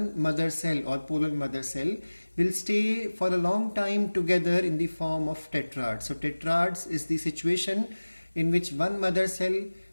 mother cell or pollen mother cell will stay for a long time together in the form of tetrads. So tetrads is the situation in which one mother cell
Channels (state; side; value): inverted; both; correlation -1.00